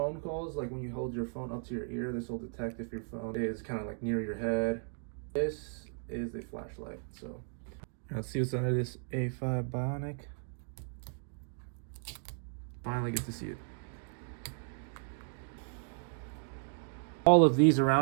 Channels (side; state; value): left; silent; 54 dB below the other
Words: calls. Like when you hold your phone up to your ear, this will detect if your phone is kind of like near your head. This is the flashlight. So let's see what's under this A5 bionic. Finally get to see it. All of these